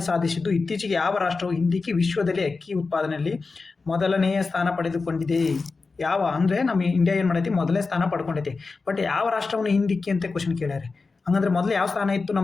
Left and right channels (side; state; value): right; quieter; 4.2 dB